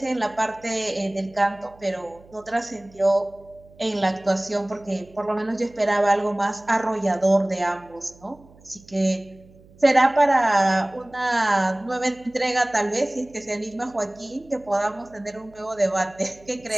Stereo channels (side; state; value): right; noise; hum, 25 dB below the sound